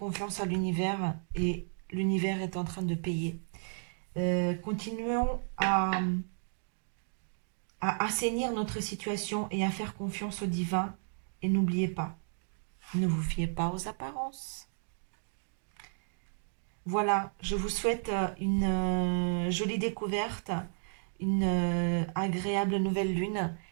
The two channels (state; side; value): silent; left; digital silence